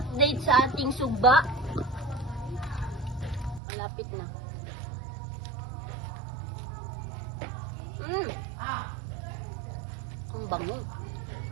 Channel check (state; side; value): drops out; left; at 3.6 s